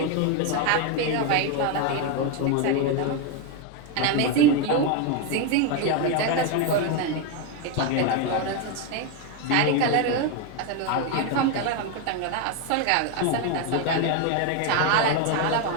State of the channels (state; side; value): different; both; correlation 0.02